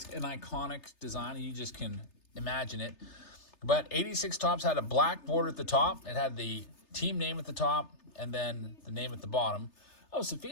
an iconic design, and you just can imagine it. But 86 Topps had a black border at the top. It had the team name at the top, and then the name at the bottom. Oh,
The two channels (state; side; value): late; right; 3.3 ms